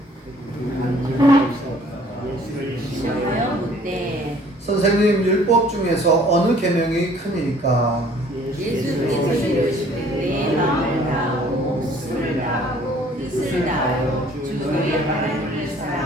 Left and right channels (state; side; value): normal; both; correlation 0.56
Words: 선생님, 율법 중에서 어느 계명이 크니까? 예수께서 이르시되 내 마음을 다하고 목숨을 다하고 뜻을 다하여 주 너희 하나님을